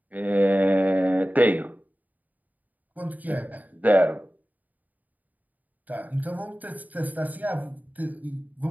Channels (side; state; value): left; late; 0.079 ms